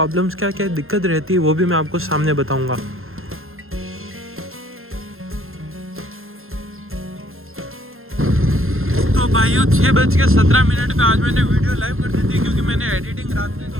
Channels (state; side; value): late; left; 0.61 ms